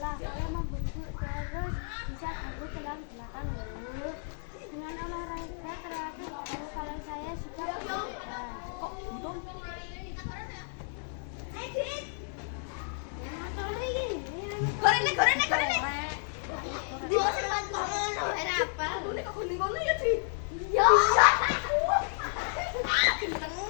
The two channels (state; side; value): silent; right; 57 dB below the other